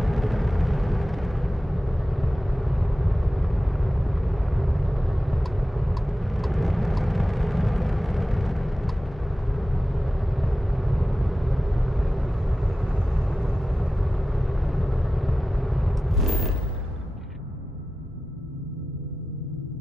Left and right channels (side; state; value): both; normal; correlation 0.94